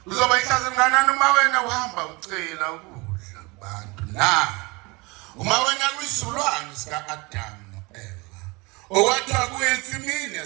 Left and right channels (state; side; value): quieter; left; 26.0 dB